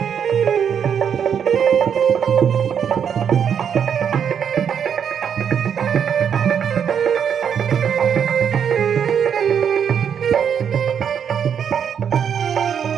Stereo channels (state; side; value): quieter; left; 7.9 dB